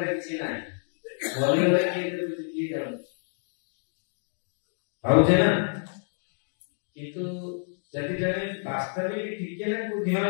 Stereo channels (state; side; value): silent; right; digital silence